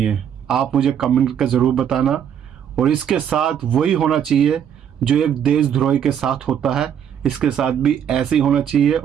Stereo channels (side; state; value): left; quieter; 8.8 dB